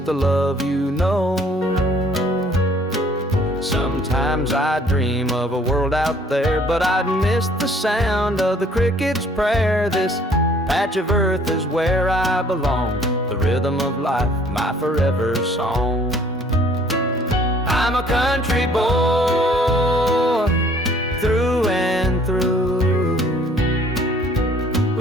love you know. Sometimes Sometimes I dream of a world out there, but I'd miss the sound of the cricket's prayer. This patch of earth is where I belong, the rhythm of life, my forever song. I'm a country boy, through and through,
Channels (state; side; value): normal; both; correlation 0.58